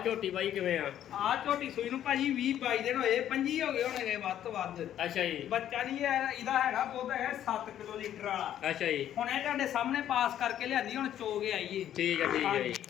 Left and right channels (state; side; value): quieter; right; 11.0 dB